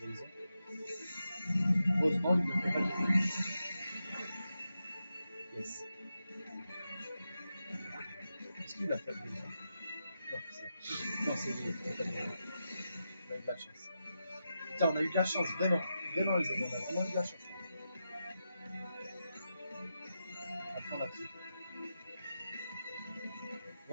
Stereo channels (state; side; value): inverted; both; correlation -0.88